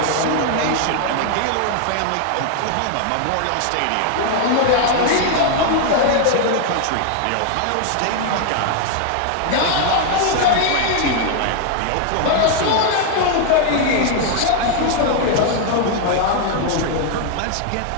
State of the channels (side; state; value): both; different; correlation 0.00